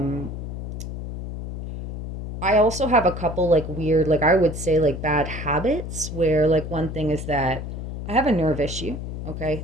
I also have a couple like weird, like I would say like bad habits, where like one thing is that I have a nerve issue. Okay,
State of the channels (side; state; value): left; noise; hum, 7 dB below the sound